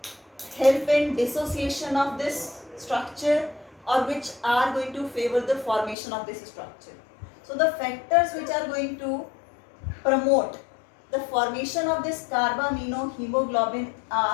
help in dissociation of this structure or which are going to favor the formation of this structure. So the factors which are going to promote the formation of this carbaminohemoglobin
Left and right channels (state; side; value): drops out; right; at 6.0 s